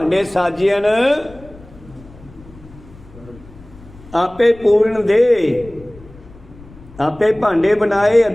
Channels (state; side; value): noise; left; rumble, 21 dB below the sound